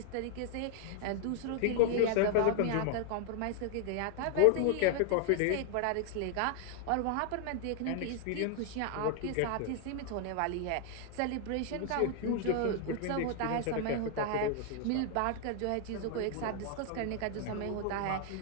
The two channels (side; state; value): both; different; correlation 0.00